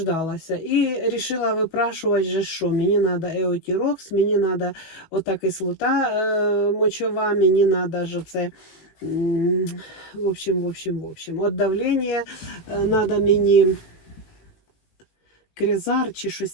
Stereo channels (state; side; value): late; right; 19 ms